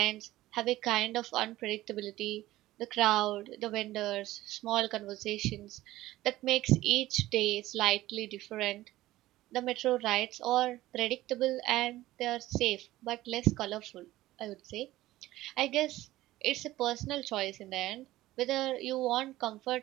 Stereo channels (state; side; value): quieter; left; 16.3 dB